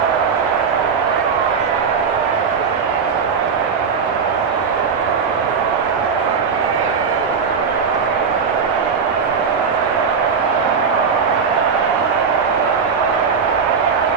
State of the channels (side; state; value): left; quieter; 5.9 dB